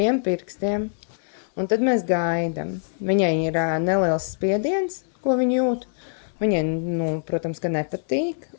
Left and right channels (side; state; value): right; silent; 60 dB below the other